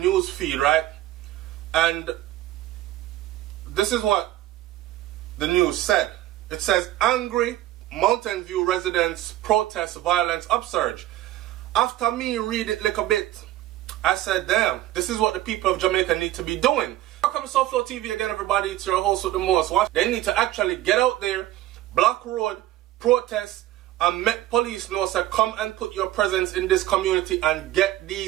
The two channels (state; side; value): quieter; left; 14.8 dB